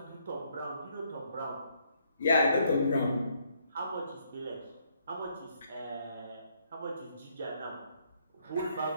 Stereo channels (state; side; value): inverted; both; correlation -0.71